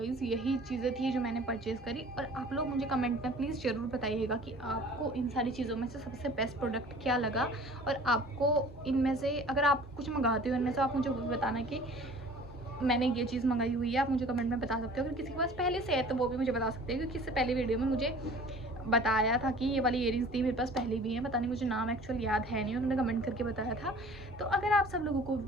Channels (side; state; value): both; normal; correlation 0.47